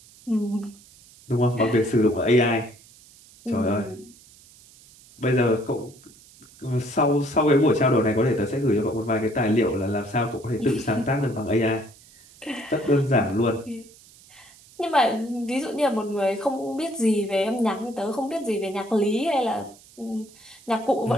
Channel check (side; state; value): right; noise; hiss, 24 dB below the sound